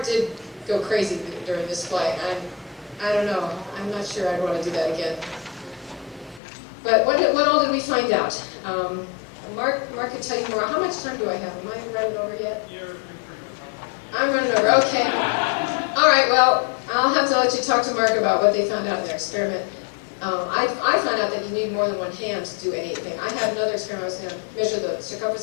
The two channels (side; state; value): right; drops out; at 6.4 s